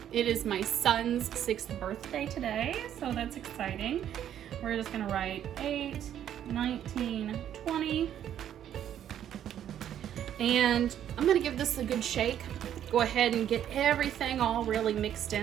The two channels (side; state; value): left; quieter; 10.3 dB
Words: It is my son's 6th birthday today, so that's exciting. We're just gonna write 8, 19, 20. And I'm gonna give this a good shake. Go ahead and get everything all really mixed